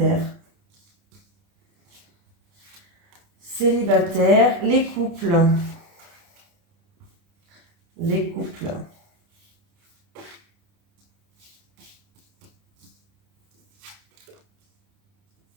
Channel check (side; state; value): left; late; 30 ms